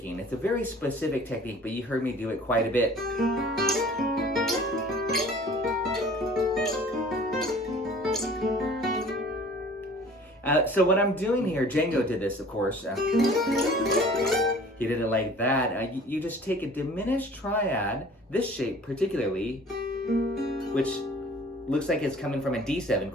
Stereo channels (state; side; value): normal; both; correlation 0.48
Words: It's a very specific technique, but you heard me do it quite a bit. So what I'm doing here, Django did this, of course. He did it like that. You just take a diminished triad, this shape particularly, which looks like it's coming from a D7